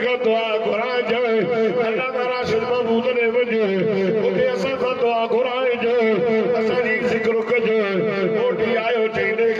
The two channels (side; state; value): both; identical; correlation 1.00